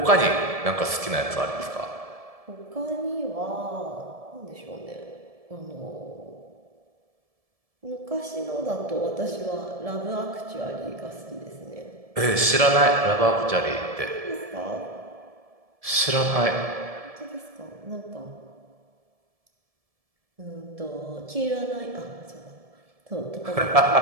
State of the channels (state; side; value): late; left; 1.7 ms